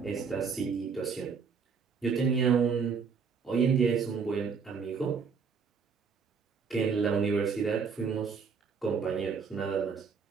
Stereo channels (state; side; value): quieter; left; 5.7 dB